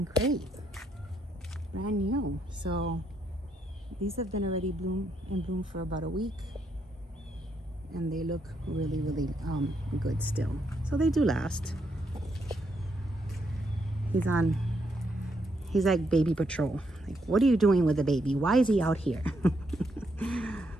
great. Brand new. So these have been already in bloom for about a week, and they look really good still. So they do last. He's like baby patrol. Like, what are you doing with the baby? Why is he out here?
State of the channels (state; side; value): normal; both; correlation 0.77